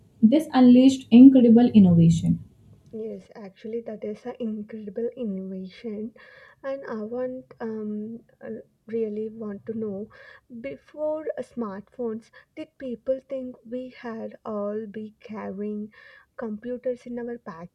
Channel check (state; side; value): identical; both; correlation 1.00